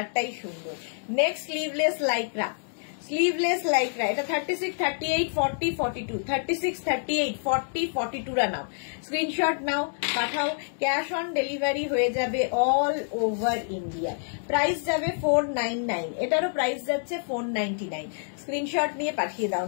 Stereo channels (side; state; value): right; silent; digital silence